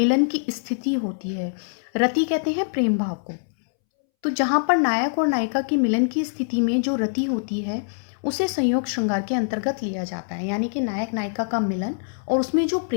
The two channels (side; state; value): right; silent; 63 dB below the other